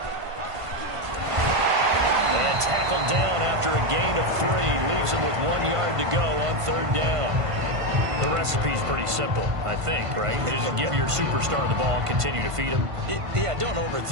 And tackled down after a gain of 3. Leaves him with 1 yard to go on third down. The recipe's pretty simple, I think, right? Just give your superstar the ball, continue to feed him. Yeah, don't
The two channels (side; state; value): left; late; 1.5 ms